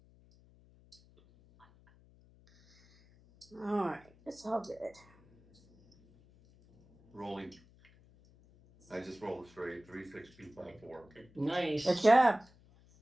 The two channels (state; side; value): noise; left; hum, 27 dB below the sound